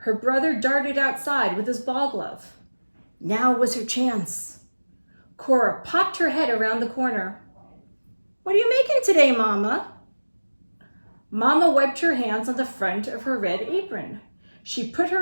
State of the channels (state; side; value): inverted; both; correlation -1.00